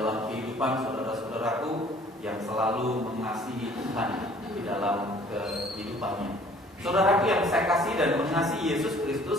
kehidupan saudara-saudaraku yang selalu mengasihi Tuhan di dalam kehidupannya. Saudaraku yang saya kasih dan mengasihi Yesus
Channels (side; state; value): both; normal; correlation 0.55